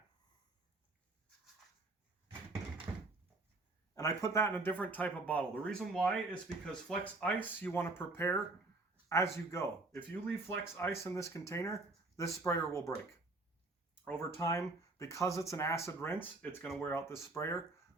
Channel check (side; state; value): left; quieter; 3.1 dB